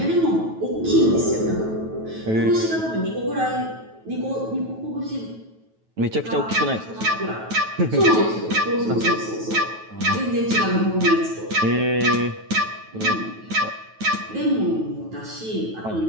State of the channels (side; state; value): left; late; 9.2 ms